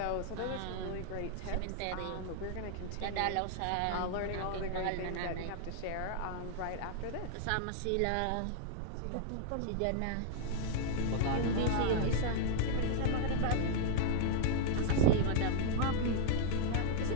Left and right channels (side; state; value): both; different; correlation -0.01